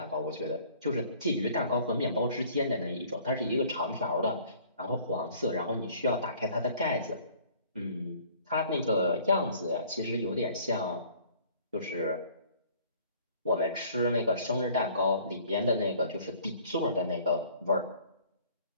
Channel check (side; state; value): both; inverted; correlation -0.54